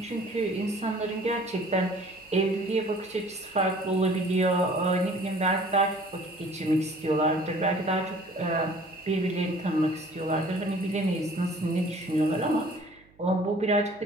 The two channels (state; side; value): noise; right; hum, 29 dB below the sound